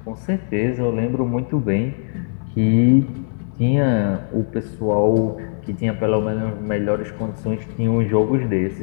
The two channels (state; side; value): silent; right; 61 dB below the other